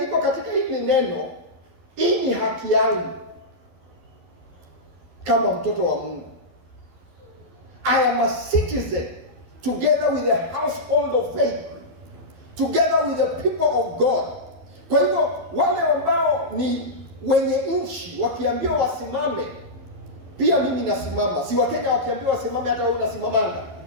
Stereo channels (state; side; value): late; left; 12 ms